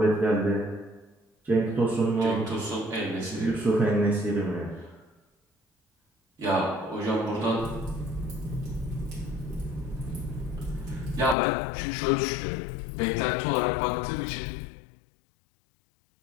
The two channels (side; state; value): right; drops out; at 11.4 s